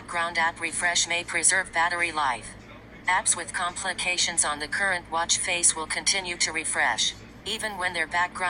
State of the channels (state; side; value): identical; both; correlation 1.00